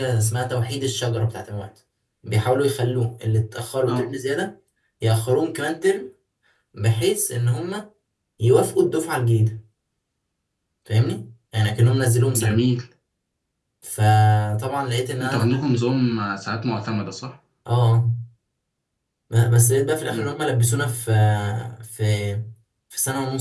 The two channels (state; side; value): identical; both; correlation 1.00